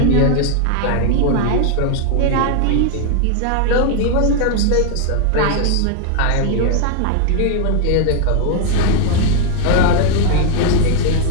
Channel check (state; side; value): different; both; correlation 0.00